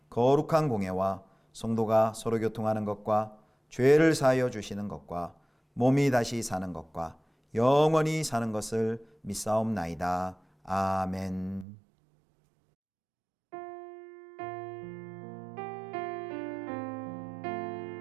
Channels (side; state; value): left; drops out; at 11.7 s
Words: 거룩한 공예와 성도가 서로 교통하는 것과 죄를 사하여 주시는 것과 몸이 다시 사는 것과 영원히 사는 것을 믿사옵나이다. 아멘.